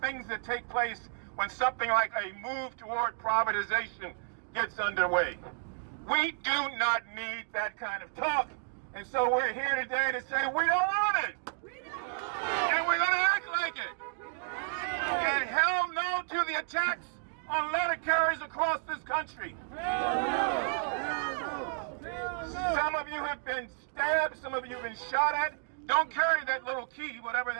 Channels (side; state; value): left; silent; digital silence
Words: that take place when something like a move toward privatization gets underway. We do not need that kind of talk. And so we're here today to say we don't want it. And we're going to act like it. And hell no to the attacks on letter carriers across this country. Some of you have been stabbed, some of you have been shot at. Don't carry that little key, whatever